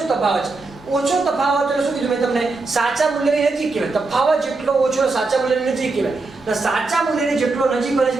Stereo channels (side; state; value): left; quieter; 3.6 dB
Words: તફાવત ઓછો તફાવત એટલે શું કીધું મેં તમને સાચા મૂલ્યની નજીક કહેવાય તફાવત જેટલો ઓછો સાચા મૂલ્યની નજીક કહેવાય તો સાચા મૂલ્યની જેટલો નજીક બને